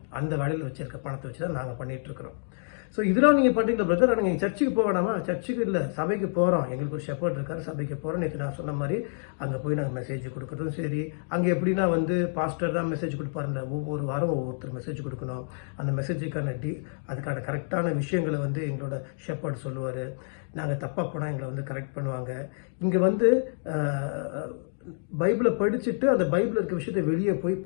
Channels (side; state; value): right; silent; digital silence